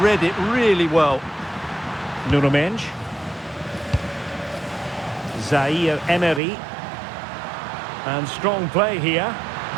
Read it really well. Nuno Mendes. Zaire Emery. And strong play here.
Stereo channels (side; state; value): left; drops out; at 6.4 s